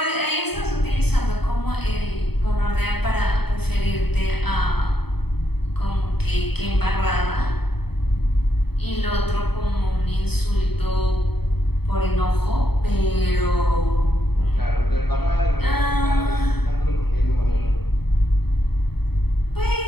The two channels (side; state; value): right; late; 0.97 ms